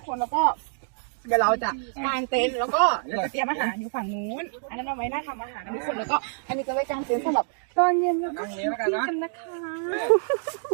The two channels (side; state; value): left; silent; digital silence